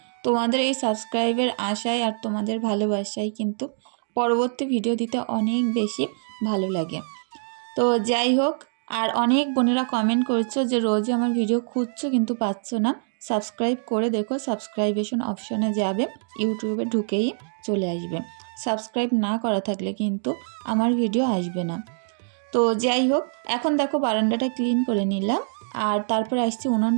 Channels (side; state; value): left; silent; digital silence